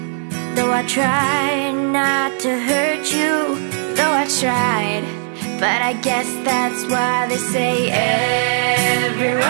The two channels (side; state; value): left; silent; 60 dB below the other